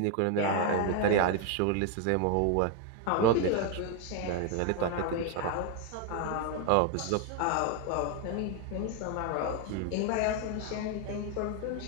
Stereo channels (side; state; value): both; different; correlation 0.01